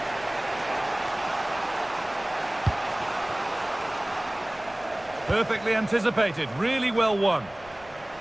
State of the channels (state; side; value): noise; left; rumble, 23 dB below the sound